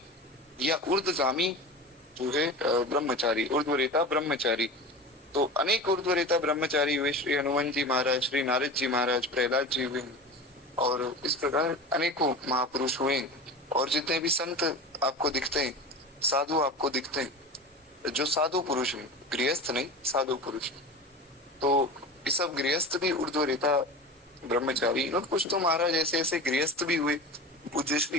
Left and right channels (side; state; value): both; normal; correlation 0.31